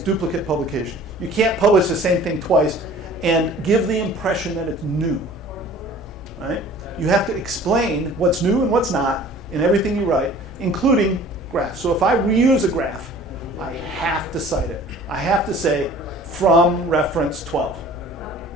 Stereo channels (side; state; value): both; normal; correlation 0.48